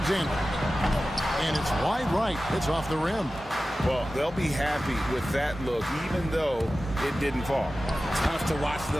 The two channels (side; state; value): both; normal; correlation 0.95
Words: And it's wide right. It's off the rim. Well, they'll be happy with that look, even though it didn't fall. Tough to watch